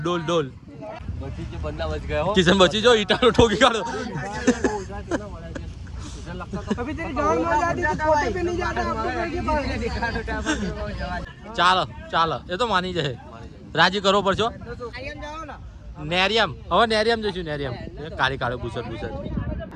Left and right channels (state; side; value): identical; both; correlation 1.00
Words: કિશન બચી જો ઈટાનો ઠોકી કાઢો ચાલો એ તો માની જાય રાજી કરવો પડશો નેરિયમ હવે નેરિયમ જઈશું નેરિયમ કાળી કાળો ભૂસર